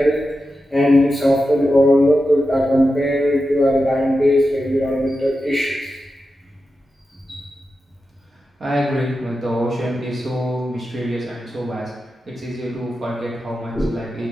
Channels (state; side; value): normal; both; correlation 0.90